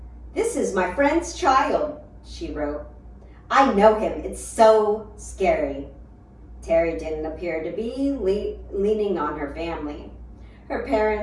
"This is my friend's child," she wrote. "I know him. It's so scary." Terry didn't appear to be leaning on her family. Her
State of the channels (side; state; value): both; identical; correlation 1.00